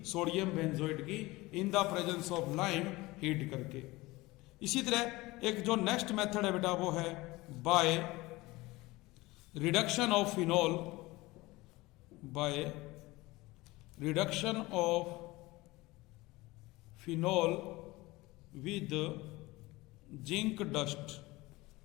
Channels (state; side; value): quieter; right; 20.8 dB